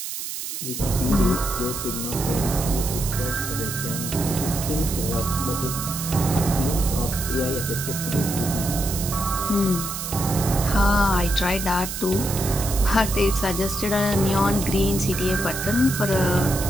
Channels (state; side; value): noise; right; hiss, 6 dB below the sound